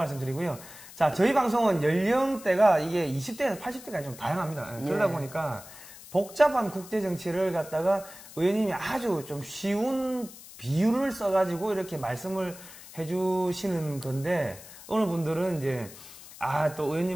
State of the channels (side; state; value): left; noise; hiss, 17 dB below the sound